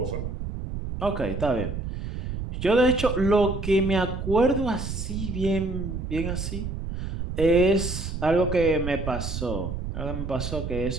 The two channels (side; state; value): right; noise; rumble, 5 dB below the sound